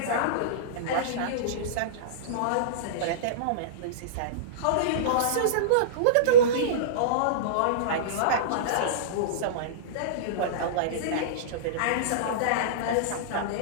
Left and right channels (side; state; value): both; different; correlation -0.05